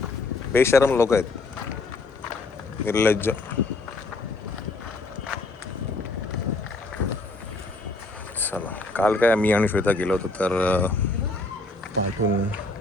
बेशरम लोक आहेत, निर्लज्ज. चला, काल काय मी आणि श्वेता गेलो होतो, तर पाठून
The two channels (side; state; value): right; quieter; 3.2 dB